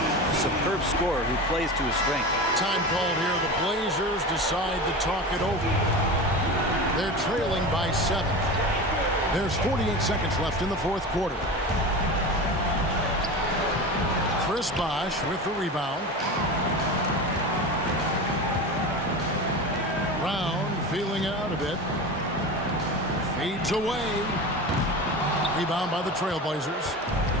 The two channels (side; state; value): both; normal; correlation 0.28